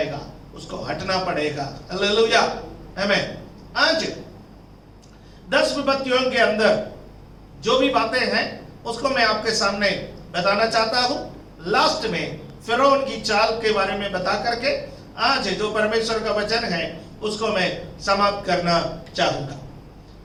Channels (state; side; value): identical; both; correlation 1.00